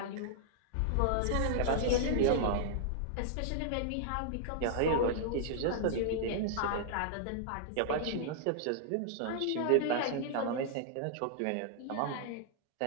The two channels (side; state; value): both; different; correlation -0.01